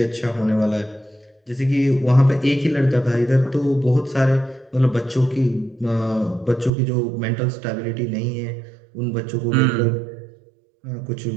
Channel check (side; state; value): left; drops out; at 6.7 s